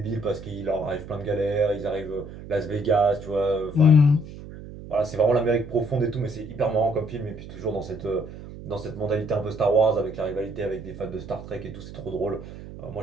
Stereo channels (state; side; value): noise; right; hum, 13 dB below the sound